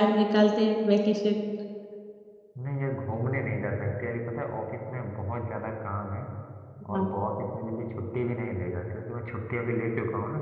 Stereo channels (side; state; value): both; identical; correlation 1.00